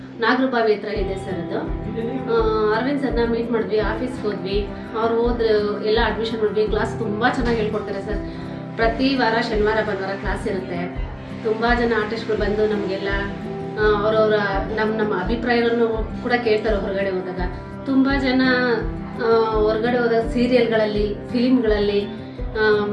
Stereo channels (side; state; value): both; identical; correlation 1.00